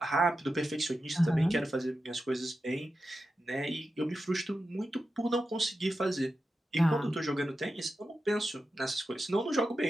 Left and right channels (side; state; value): both; normal; correlation 0.91